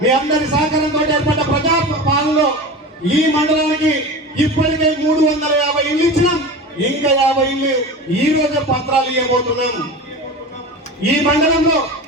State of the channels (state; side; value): normal; both; correlation 0.30